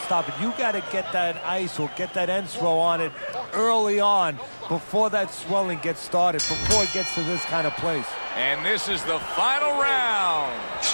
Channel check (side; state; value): both; inverted; correlation -1.00